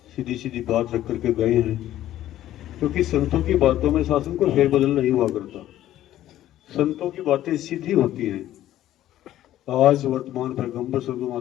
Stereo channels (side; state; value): right; quieter; 13.2 dB